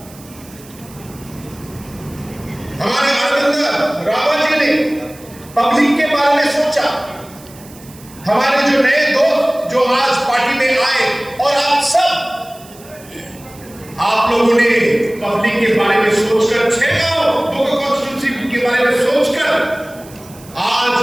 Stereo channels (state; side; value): noise; right; hiss, 22 dB below the sound